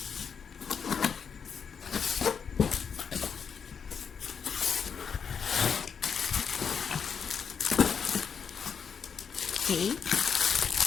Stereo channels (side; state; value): right; quieter; 6.6 dB